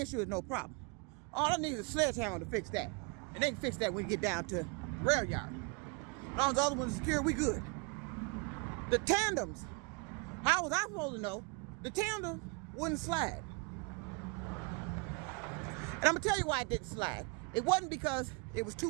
is no problem. All I need is a sledgehammer to fix that. And they can fix that when we get down to the rail yard. As long as the other one's secure, we good. The tandems, how was I supposed to know the tandem wouldn't slide? And I'm gonna tell you why it didn't slide. It wasn't because it was too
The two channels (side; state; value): left; quieter; 30.2 dB